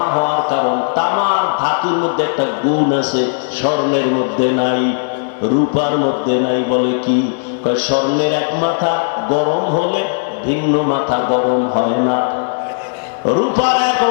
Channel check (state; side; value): silent; right; digital silence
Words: হওয়ার কারণ, তামার ধাতুর মধ্যে একটা গুণ আছে, স্বর্ণের মধ্যে নাই, রূপার মধ্যে নাই। বলে কি? স্বর্ণের এক মাথা গরম হলে ভিন্ন মাথা গরম হয় না, রূপার এক